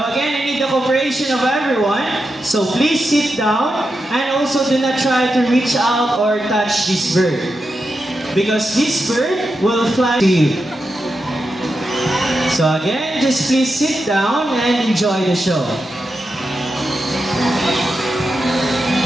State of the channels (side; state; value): both; normal; correlation 0.88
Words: again, I need the cooperation of everyone, so please sit down and also do not try to reach out or touch this bird, because this bird will fly to you. So again, just please sit down and enjoy the show.